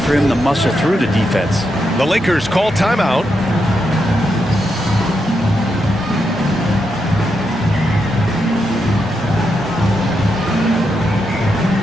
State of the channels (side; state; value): both; normal; correlation 0.83